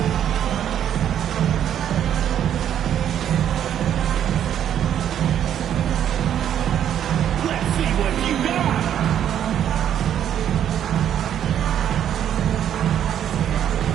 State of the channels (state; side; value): quieter; left; 10.0 dB